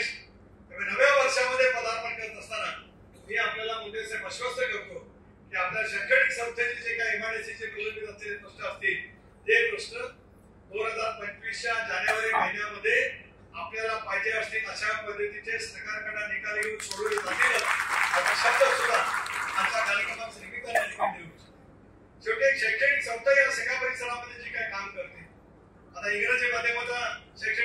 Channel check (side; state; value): both; identical; correlation 1.00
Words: नव्या वर्षामध्ये पदार्पण करत असताना मी आपल्याला मुद्देसे आश्वस्त करतो की आपल्या शैक्षणिक संस्थेचे जे काही MIDCचे प्रलंबित असलेले प्रश्न असतील ते प्रश्न 2025च्या जानेवारी महिन्यामध्ये आपल्याला पाहिजे असतील अशा पद्धतीचे सरकारकडे निकाल घेऊन सोडवले जातील असा शब्द सुद्धा आजच्या कार्यक्रमाच्या निमित्ताने देऊ. शेवटी एक शैक्षणिक संस्था या सगळ्या परिसरामध्ये जी काही काम करते, आता इंग्रजी माध्यमाचा